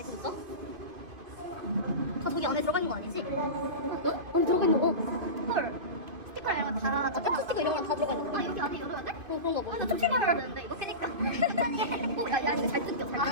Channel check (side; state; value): left; late; 2.5 ms